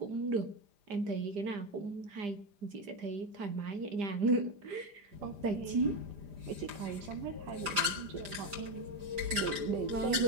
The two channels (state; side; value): late; left; 5.0 ms